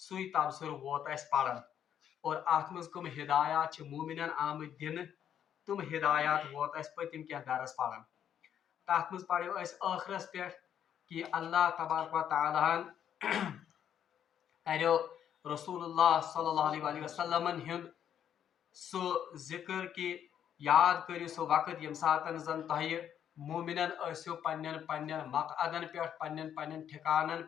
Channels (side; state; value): right; quieter; 9.4 dB